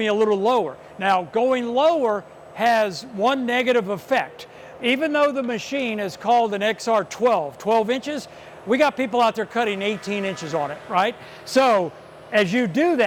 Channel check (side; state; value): both; identical; correlation 1.00